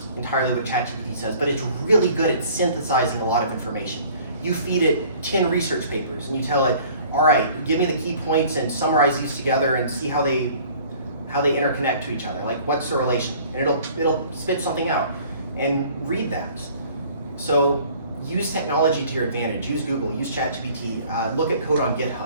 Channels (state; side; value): inverted; both; correlation -0.52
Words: entirely what ChatGPT says, but it's really good at synthesizing a lot of information. You feed it 10 research papers and you tell it, all right, give me the key points and summarize these together and see how they interconnect to each other. Like, what's the relation? And it'll spit something out. And read that. So use technology to your advantage. Use Google, use ChatGPT, look at code on